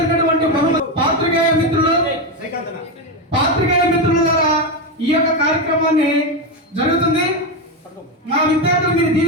బహుమతి. పాత్రికేయ మిత్రుల ద్వారా ఈ యొక్క కార్యక్రమాన్ని జరుగుతుంది. మా విద్యార్థులు మీరు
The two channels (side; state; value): both; normal; correlation 0.11